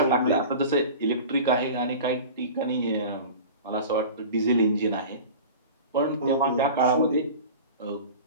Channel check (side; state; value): both; inverted; correlation -0.36